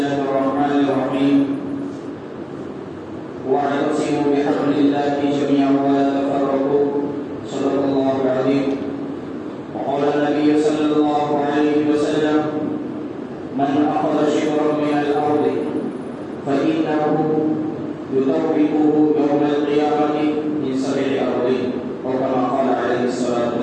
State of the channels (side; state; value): both; identical; correlation 1.00